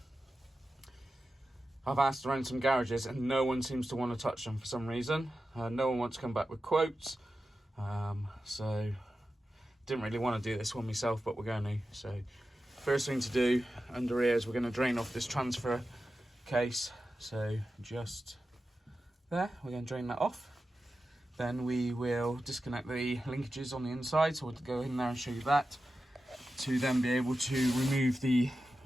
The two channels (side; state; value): both; normal; correlation 0.92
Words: I've asked around some garages and no one seems to want to touch them for some reason. No one wants to come back with quotes. So didn't really want to do this one myself, but we're going to. So first thing to do under here is we're going to drain off this transfer case. So just there, we're going to drain that off. Then we will disconnect the linkages on the inside, so we'll go in there and show you that, to then be able to remove the